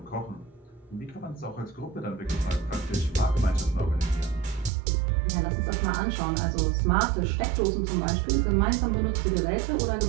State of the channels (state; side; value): drops out; left; at 4.7 s